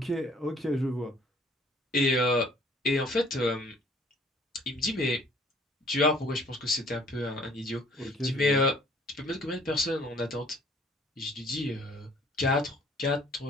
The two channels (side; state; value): both; normal; correlation 0.57